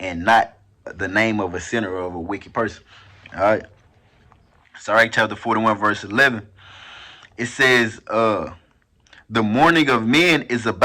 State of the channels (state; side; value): identical; both; correlation 1.00